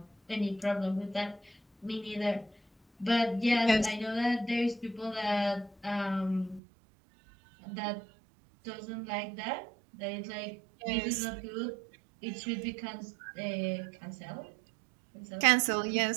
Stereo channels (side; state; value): left; drops out; at 6.6 s